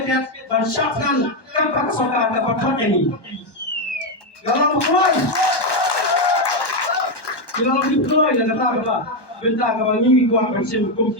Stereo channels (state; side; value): late; right; 1.1 ms